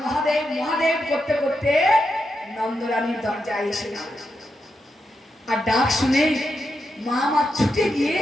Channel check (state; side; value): normal; both; correlation 0.85